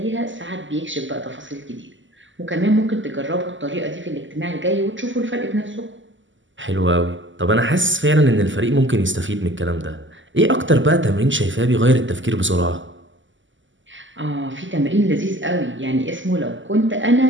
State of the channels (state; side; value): late; left; 0.55 ms